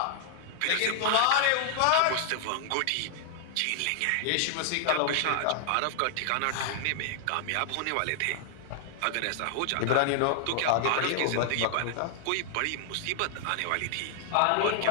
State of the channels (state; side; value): different; both; correlation 0.00